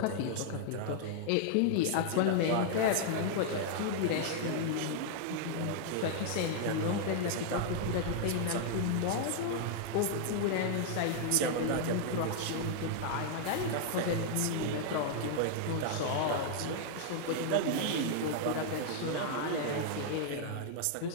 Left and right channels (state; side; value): different; both; correlation 0.00